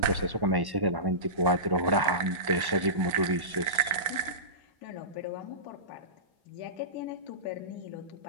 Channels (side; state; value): left; late; 1.1 ms